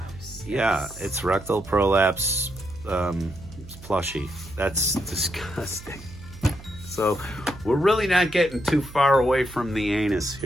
Yeah, it's rectal prolapse. It's plushy. That's disgusting. So we're really not getting too far away from the anus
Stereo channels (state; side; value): noise; right; hum, 17 dB below the sound